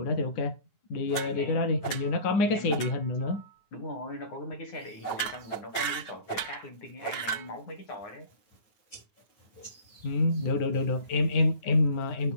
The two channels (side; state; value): right; late; 9.6 ms